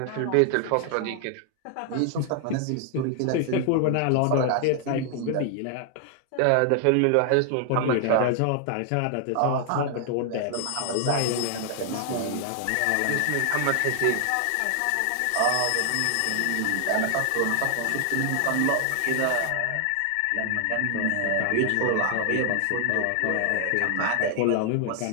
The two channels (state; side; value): different; both; correlation 0.00